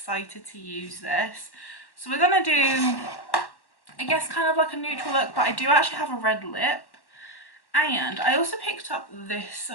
to use this. So we're gonna do, I guess, kind of like a neutral look, but I do actually have a red lip. And I also picked up this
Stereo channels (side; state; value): right; late; 1.1 ms